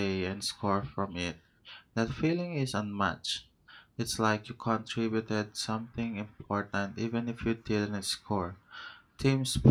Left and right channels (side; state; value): both; identical; correlation 1.00